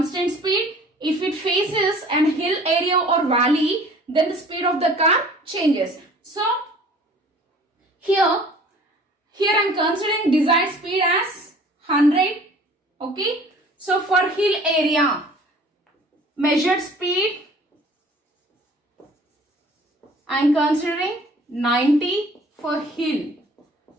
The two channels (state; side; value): normal; both; correlation 0.49